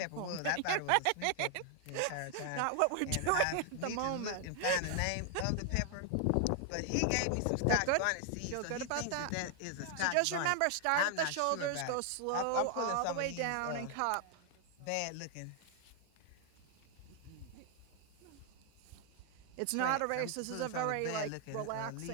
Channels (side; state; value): both; different; correlation 0.00